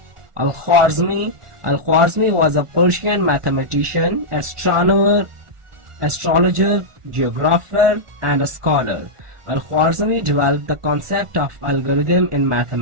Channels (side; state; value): left; late; 1.4 ms